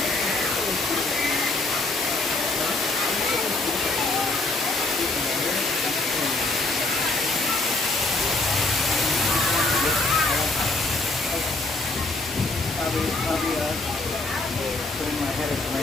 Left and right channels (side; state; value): right; quieter; 3.2 dB